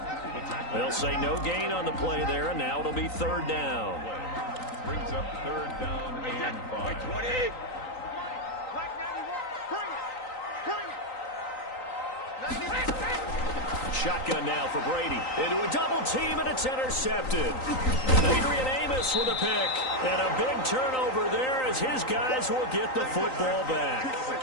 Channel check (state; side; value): late; right; 3.9 ms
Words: They'll say no gain on the play there, and now it'll be 3rd down. Brings up 3rd down and 5. 20. Shotgun now for Brady. Into a double team, and it's intercepted. Adrian Amos with a pick. And a big turnover there as his guys will get the football back.